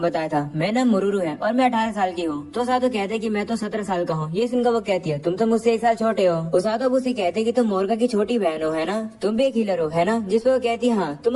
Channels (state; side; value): identical; both; correlation 1.00